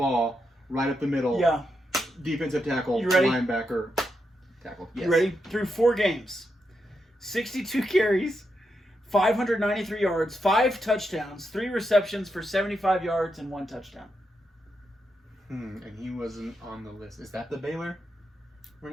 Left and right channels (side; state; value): both; normal; correlation 0.84